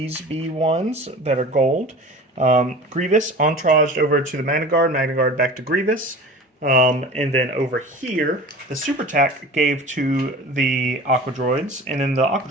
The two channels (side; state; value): both; normal; correlation 0.38